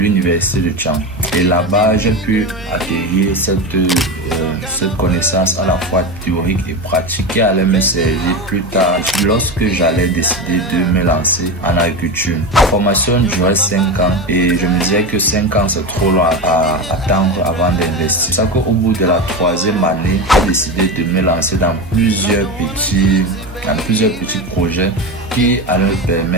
de Tchang. Et là-bas, j'ai pu acquérir cette connaissance à la fois théorique et pratique qui allait me servir plus tard lorsque j'allais décider de me lancer en agriculture. La formation durait 5 ans et je me disais que 5 ans c'est trop long à attendre avant d'investir. C'est ça qu'au bout de la 3e année, j'ai décidé de me lancer dans plusieurs petits projets qui allaient me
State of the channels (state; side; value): noise; right; hum, 19 dB below the sound